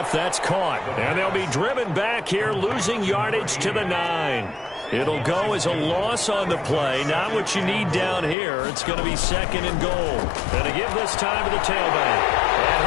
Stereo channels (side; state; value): right; drops out; at 8.3 s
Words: That's caught. And they'll be driven back here, losing yardage to the 9. It'll go as a loss on the play. Not what you need down here. It's going to be second and goal. And to give this time to the tailback. And